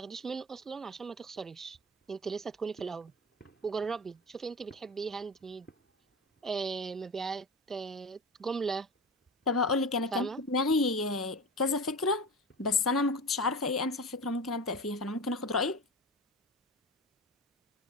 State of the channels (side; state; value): both; normal; correlation 0.30